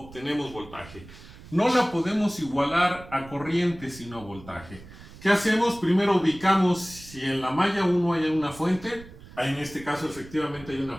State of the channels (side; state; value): right; noise; rumble, 18 dB below the sound